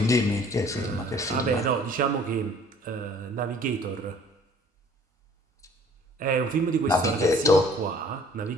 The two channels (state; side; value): normal; both; correlation 0.54